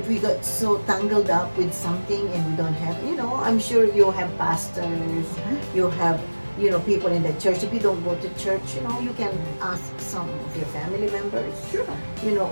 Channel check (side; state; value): both; inverted; correlation -1.00